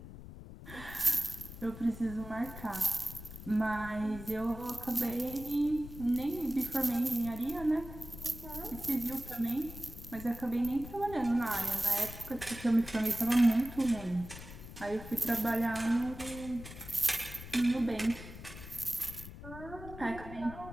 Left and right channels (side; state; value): left; noise; rumble, 13 dB below the sound